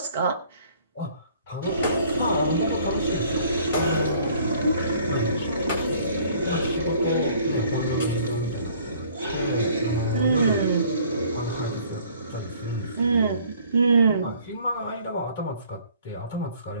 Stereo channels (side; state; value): both; inverted; correlation -0.56